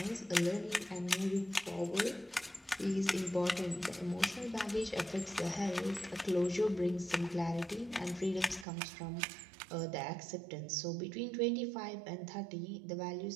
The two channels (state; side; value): drops out; left; at 8.7 s